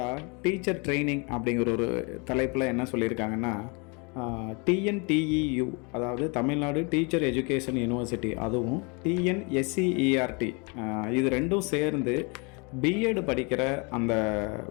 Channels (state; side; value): quieter; right; 31.5 dB